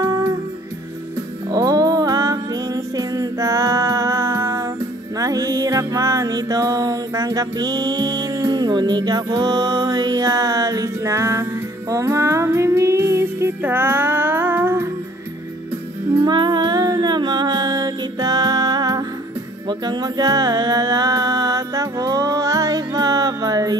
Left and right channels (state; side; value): normal; both; correlation 0.56